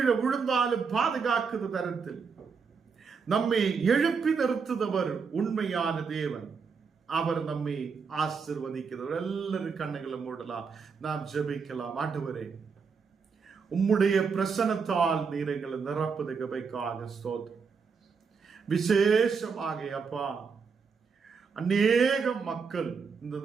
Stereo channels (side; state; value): left; quieter; 5.6 dB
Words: விழுந்தாலும் பாதுகாக்குத தரத்தில் நம்மை எழுப்பி நிறுத்துதவர் உண்மையான தேவன். அவர் நம்மை ஆசீர்வதிக்கிறவர். எல்லாரும் கண்ணுகளை மூடலாம், நாம் ஜெபிக்கலாம். ஆண்டவரே, உம்முடைய பிரசன்னத்தால் நீர் எங்களை நிரப்புது கிருபைக்காக ஸ்தோத்திரம். விசேஷமாக அப்பா, அநேக மக்கள் இந்த